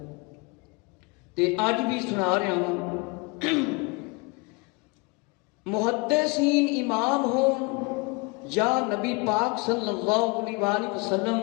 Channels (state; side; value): quieter; right; 28.3 dB